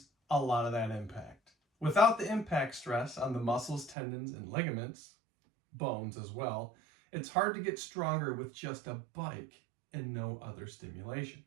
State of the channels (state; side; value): drops out; left; at 4.0 s